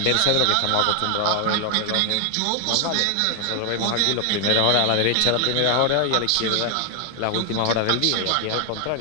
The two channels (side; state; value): both; different; correlation 0.00